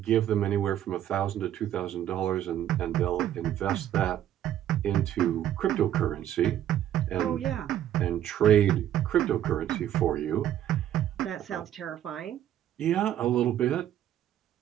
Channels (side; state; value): left; quieter; 11.3 dB